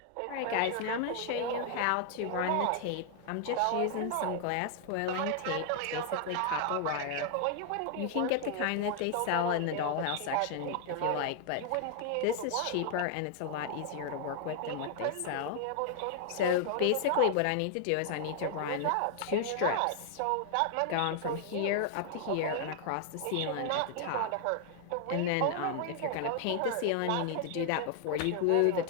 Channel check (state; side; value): different; both; correlation 0.00